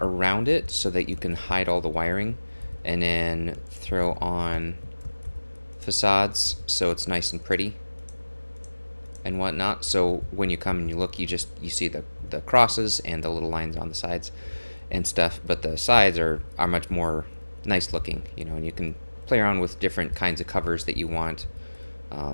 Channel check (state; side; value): inverted; both; correlation -1.00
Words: around it so that you can hide all the wiring, and then throw on facades so it's nice and pretty and whatnot. So when you come and you look, you see the crosses and the little lines on the sides and stuff, but the sides are much more nice looking, and you can play around with different kinds of covers that you want.